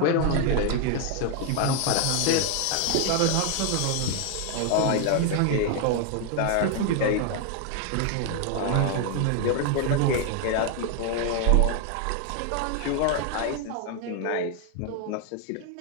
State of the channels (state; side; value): different; both; correlation 0.01